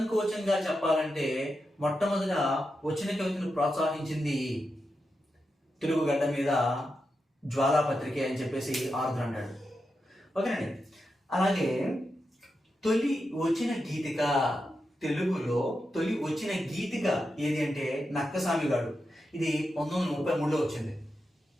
చెప్పాలంటే మొట్టమొదట వచన కవితను ప్రోత్సహించింది తెలుగు గడ్డ మీద జ్వాలాపత్రికే అని చెప్పేసి ఆరుద్ర అంటాడు. ఓకేనండి. అలాగే తొలి వచన గీతిక, తెలుగులో తొలి వచ్చిన గీతిక ఏది అంటే నక్కసామిగాడు. ఇది 1933లో వచ్చింది.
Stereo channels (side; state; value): both; normal; correlation 0.88